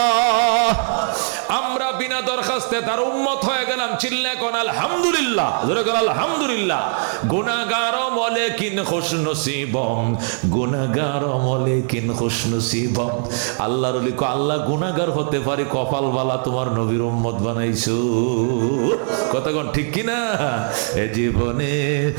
আমরা বিনা দরখাস্তে তার উম্মত হয়ে গেলাম। চিল্লায় কোন আলহামদুলিল্লাহ। জোরে কোন আলহামদুলিল্লাহ। গুনাহগার মলেকিন খুশনসিবম, গুনাহগার মলেকিন খুশনসিবম। আল্লাহর ওলি কো আল্লাহ গুনাহগার হতে পারি, কপাল বালা তোমার নবীর উম্মত বানাইছো। কথা কোন ঠিক কি না? এ জীবনে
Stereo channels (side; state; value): left; silent; 60 dB below the other